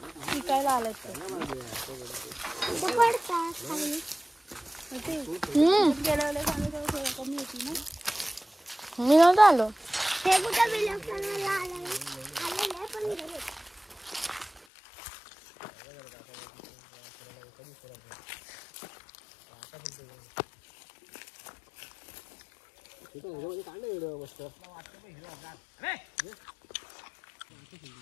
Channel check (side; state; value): right; drops out; at 14.6 s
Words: शिकायला आलं पडतात. मी नव्हतं आलो. हे कुठं बिलकुल आले पण